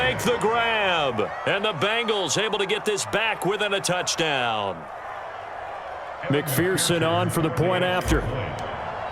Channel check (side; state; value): both; identical; correlation 1.00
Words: the grab. And the Bengals able to get this back within a touchdown. McPherson on for the point after.